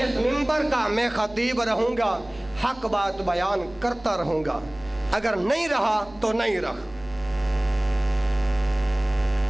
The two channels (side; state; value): right; noise; hum, 23 dB below the sound